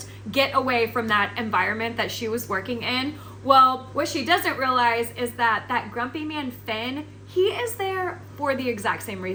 get away from that environment that she was working in. Well, what she doesn't realize is that that grumpy man, Finn, he is there for the exact same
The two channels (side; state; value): both; identical; correlation 1.00